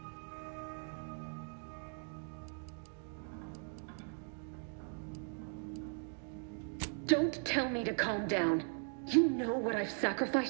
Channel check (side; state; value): left; silent; 52 dB below the other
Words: Don't tell me to calm down. You know what I've